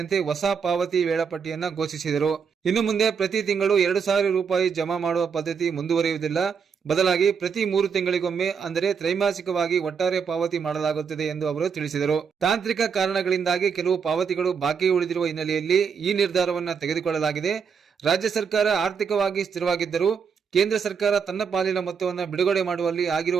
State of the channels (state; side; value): quieter; left; 6.4 dB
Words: ಹೊಸ ಪಾವತಿ ವೇಳಾಪಟ್ಟಿಯನ್ನ ಘೋಷಿಸಿದರು. ಇನ್ನು ಮುಂದೆ ಪ್ರತಿ ತಿಂಗಳು 2,000 ರೂಪಾಯಿ ಜಮಾ ಮಾಡುವ ಪದ್ಧತಿ ಮುಂದುವರಿಯುವುದಿಲ್ಲ. ಬದಲಾಗಿ ಪ್ರತಿ 3 ತಿಂಗಳಿಗೊಮ್ಮೆ, ಅಂದರೆ ತ್ರೈಮಾಸಿಕವಾಗಿ ಒಟ್ಟಾರೆ ಪಾವತಿ ಮಾಡಲಾಗುತ್ತದೆ ಎಂದು ಅವರು ತಿಳಿಸಿದರು. ತಾಂತ್ರಿಕ ಕಾರಣಗಳಿಂದಾಗಿ ಕೆಲವು ಪಾವತಿಗಳು ಬಾಕಿ ಉಳಿದಿರುವ ಹಿನ್ನೆಲೆಯಲ್ಲಿ ಈ ನಿರ್ಧಾರವನ್ನು ತೆಗೆದುಕೊಳ್ಳಲಾಗಿದೆ. ರಾಜ್ಯ ಸರ್ಕಾರ ಆರ್ಥಿಕವಾಗಿ ಸ್ಥಿರವಾಗಿದ್ದರೂ ಕೇಂದ್ರ ಸರ್ಕಾರ ತನ್ನ ಪಾಲಿನ ಮೊತ್ತವನ್ನು ಬಿಡುಗಡೆ ಮಾಡುವಲ್ಲಿ